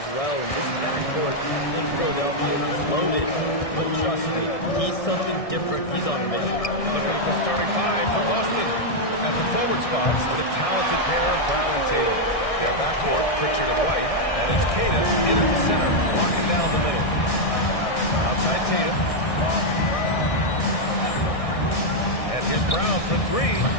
well. And this backcourt in Philadelphia is loaded. But trust me, he's something different. He's on a mission. Looking at the starting five for Boston. At the forward spots, the talented pair of Brown and Tatum. Their backcourt, Pritchard and White. And it's Tatum in at the center, locking down the middle. Outside Tatum. Here's Brown for three.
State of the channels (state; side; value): late; right; 1.6 ms